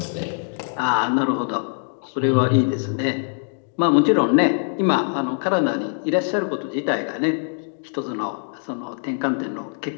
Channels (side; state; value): right; silent; 64 dB below the other